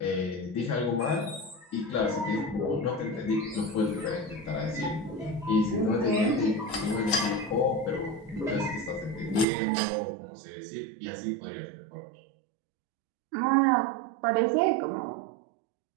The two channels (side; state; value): left; drops out; at 9.5 s